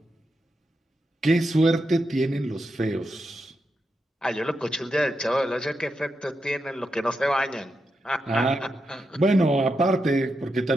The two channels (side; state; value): both; normal; correlation 0.86